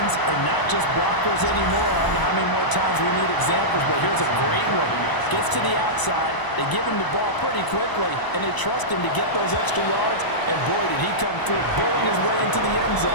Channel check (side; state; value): right; late; 1.0 ms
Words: are not just blockers anymore. I don't know how many more times we need examples, but here's a great one. Gets to the outside, they give him the ball pretty quickly, and they trust him to get those extra yards, and boy, did he come through, bulling his way into the end